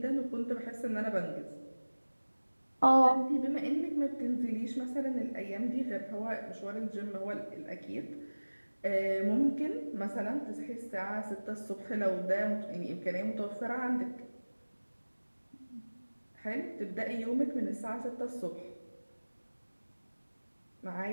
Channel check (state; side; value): inverted; both; correlation -1.00